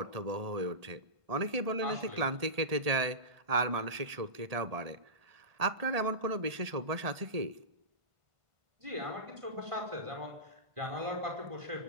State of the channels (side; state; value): left; late; 1.7 ms